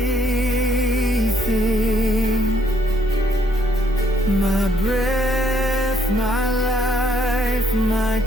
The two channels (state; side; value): normal; both; correlation 0.68